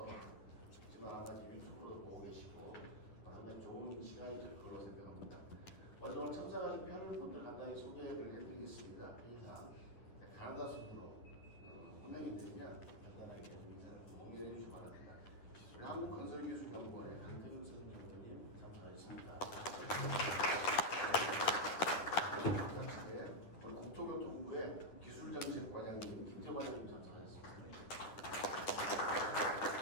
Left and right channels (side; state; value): right; late; 10 ms